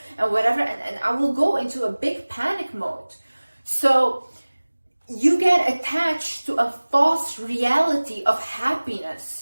and whatever. And I will go into a big panic mode. So you get attached to a false reality of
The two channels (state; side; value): inverted; both; correlation -1.00